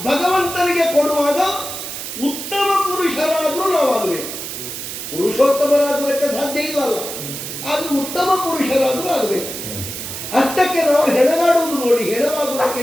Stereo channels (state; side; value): noise; right; hiss, 7 dB below the sound